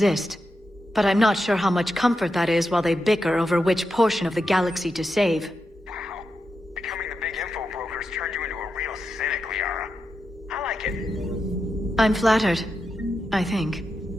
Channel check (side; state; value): both; normal; correlation 0.87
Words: But I'm not sure how much comfort that is while they bicker over which portion of the galaxy to save. Wow. Becoming the big info brokers turned you into a real cynic, Liara. I like it. I'm flattered. I think.